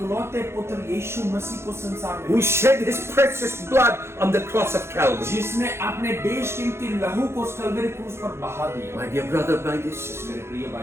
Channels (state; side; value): late; left; 0.12 ms